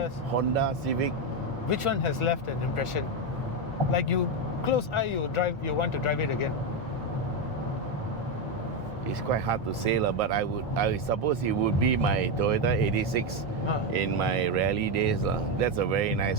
Toyotas. Honda, Civic. Which one has left an impression? Like you close eye, you want to drive it again. It's quite hard to say, but I suppose it would be my Toyota 86 in my rally days. That's a very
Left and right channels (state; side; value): normal; both; correlation 0.08